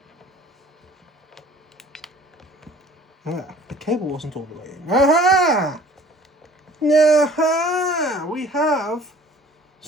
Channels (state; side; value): normal; both; correlation 0.51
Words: Ah, the cable wasn't all the way in. Aha! Aha! We have